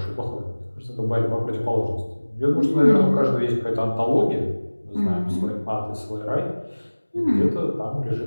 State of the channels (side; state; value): both; inverted; correlation -1.00